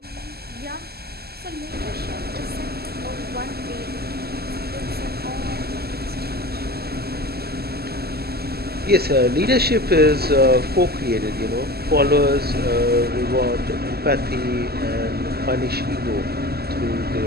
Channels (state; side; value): late; left; 0.46 ms